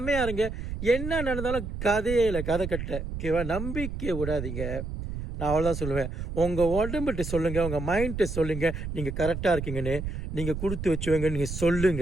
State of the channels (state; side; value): noise; right; rumble, 6 dB below the sound